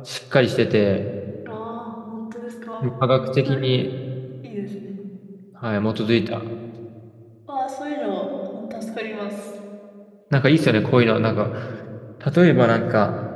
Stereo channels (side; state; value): both; identical; correlation 1.00